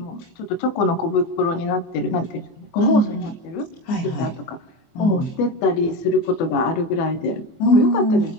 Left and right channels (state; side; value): late; right; 24 ms